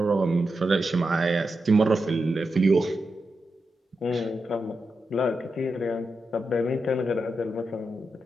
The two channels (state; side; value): normal; both; correlation 0.88